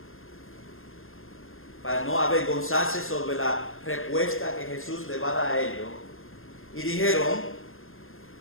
para no avergonzarse sobre la respuesta que Jesús le va a dar a ellos. Y dijeron,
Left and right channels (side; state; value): right; late; 0.60 ms